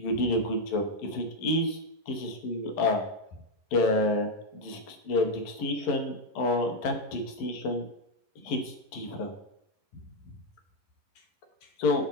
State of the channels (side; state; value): right; late; 11 ms